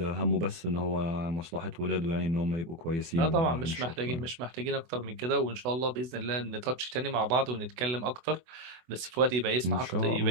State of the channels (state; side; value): late; left; 24 ms